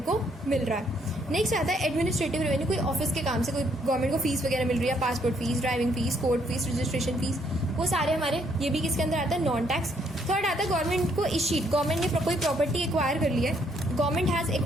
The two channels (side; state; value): both; normal; correlation 0.70